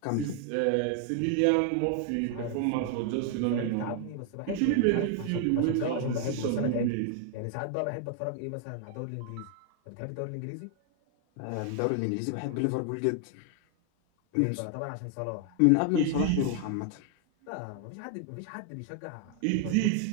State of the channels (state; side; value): different; both; correlation 0.00